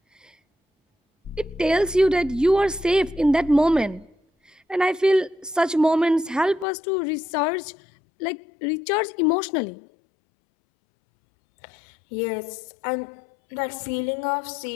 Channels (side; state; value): right; drops out; at 6.7 s